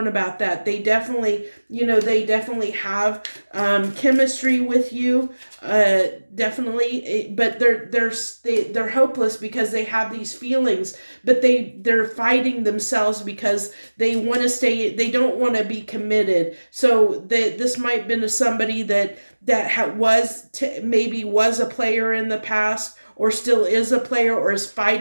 about that. They definitely, they definitely have chemistry with you, definitely, but they're hopeless because they have these feelings, but they're fighting themselves because they want to stay. They don't want to be committed. So this might have been somebody that maybe was a player in the past, or still is a player, or is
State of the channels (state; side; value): inverted; both; correlation -1.00